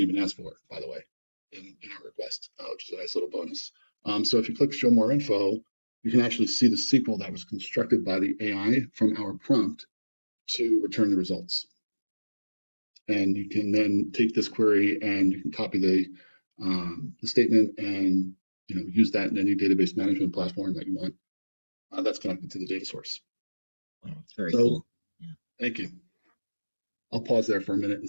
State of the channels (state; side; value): inverted; both; correlation -1.00